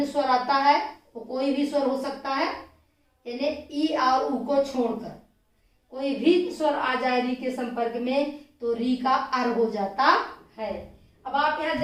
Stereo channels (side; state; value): both; identical; correlation 1.00